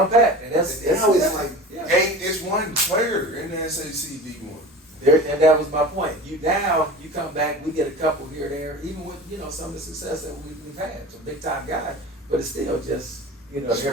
packed, and that's now it's like it's one player in the SAC D1. And that was my point. You come back, we get a couple here and there, even with some of the success that we've had, some big time guys, but it's still just they're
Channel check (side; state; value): both; normal; correlation 0.36